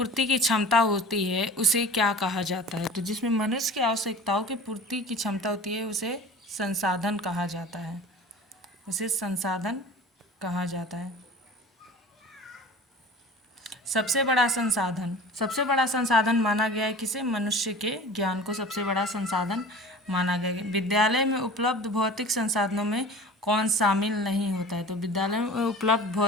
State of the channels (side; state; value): both; normal; correlation 0.40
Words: की क्षमता होती है, उसे क्या कहा जाता है। तो जिसमें मनुष्य की आवश्यकताओं की पूर्ति की क्षमता होती है, उसे संसाधन कहा जाता है। उसे संसाधन कहा जाता है। सबसे बड़ा संसाधन माना गया है किसे? मनुष्य के ज्ञान को सबसे बड़ा संसाधन माना गया है। विद्यालय में उपलब्ध भौतिक संसाधनों में कौन शामिल नहीं होता है? तो विद्यालय में उपलब्ध